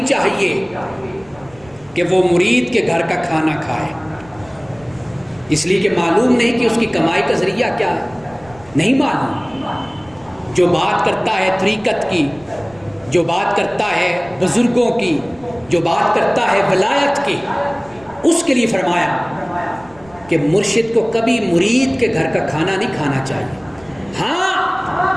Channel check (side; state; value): right; noise; rumble, 26 dB below the sound